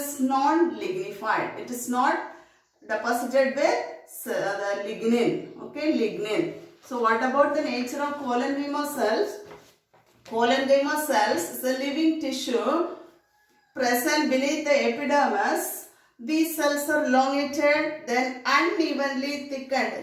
non-lignified. It is not deposited with the lignin. Okay, lignin. So what about the nature of collenchyma cells? Collenchyma cells is a living tissue present beneath the epidermis. These cells are elongated, then unevenly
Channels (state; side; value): identical; both; correlation 1.00